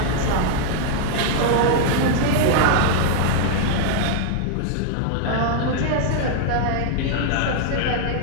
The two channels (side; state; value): both; different; correlation 0.00